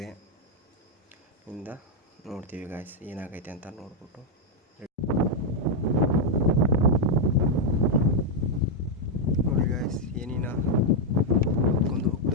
ಇಂದ ನೋಡ್ತೀವಿ ಗಾಯ್ಸ್ ಏನಾಗೈತೆ ಅಂತ ನೋಡ್ಬಿಟ್ಟು. ನೋಡಿ ಗಾಯ್ಸ್, ಏನಿನ ಹೊತ್ಕೊಂಡು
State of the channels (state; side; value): normal; both; correlation -0.01